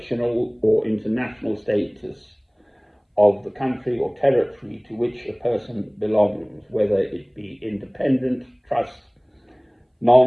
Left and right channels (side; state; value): both; identical; correlation 1.00